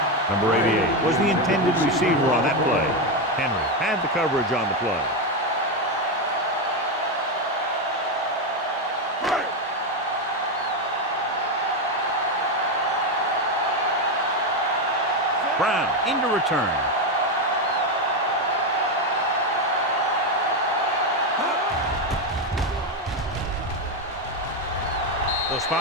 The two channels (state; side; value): normal; both; correlation 0.08